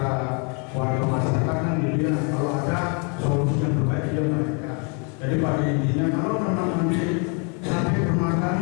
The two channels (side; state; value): right; quieter; 36.4 dB